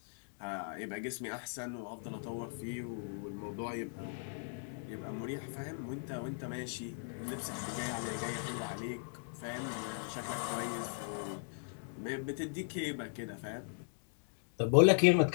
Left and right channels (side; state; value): right; silent; digital silence